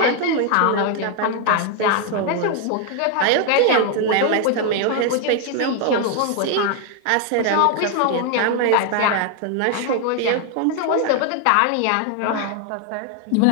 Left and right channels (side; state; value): both; different; correlation 0.01